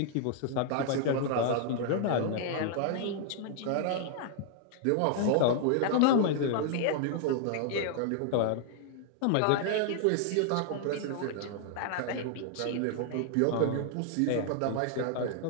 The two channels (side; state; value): both; different; correlation 0.00